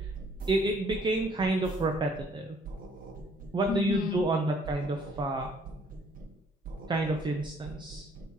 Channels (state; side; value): normal; both; correlation 0.62